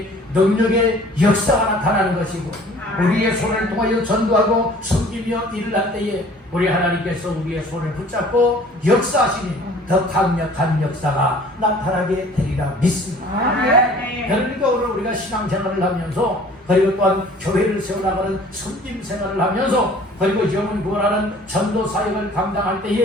능력의 역사가 나타나는 것이고 우리의 손을 통하여 전도하고 섬기며 일을 할 때에 우리 하나님께서 우리의 손을 붙잡고 역사하시니 더 강력한 역사가 나타나게 되리라 믿습니다. 그러니까 오늘 우리가 신앙생활을 하면서 그리고 또한 교회를 세워나가는 섬김 생활을 하면서 그리고 영혼 구원하는 전도 사역을 감당할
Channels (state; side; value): normal; both; correlation 0.50